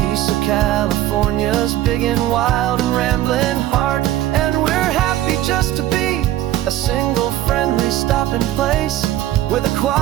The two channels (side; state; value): left; quieter; 13.9 dB